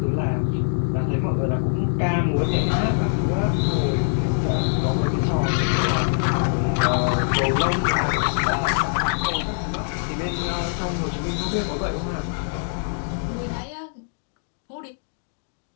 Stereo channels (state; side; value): silent; right; digital silence